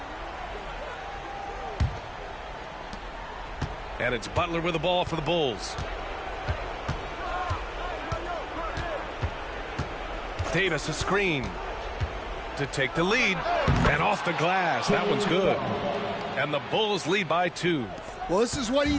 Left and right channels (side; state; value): both; identical; correlation 1.00